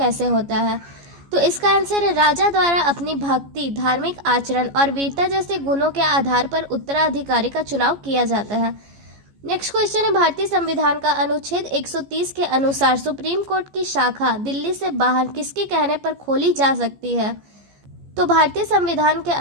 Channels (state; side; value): late; left; 14 ms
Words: होता है। तो इसका आंसर है राजा द्वारा अपनी भक्ति, धार्मिक आचरण और वीरता जैसे गुणों के आधार पर उत्तराधिकारी का चुनाव किया जाता है। नेक्स्ट क्वेश्चन है भारतीय संविधान का अनुच्छेद 130 के अनुसार सुप्रीम कोर्ट की शाखा दिल्ली से बाहर किसके कहने पर खोली जा सकती है? तो भारतीय संविधान के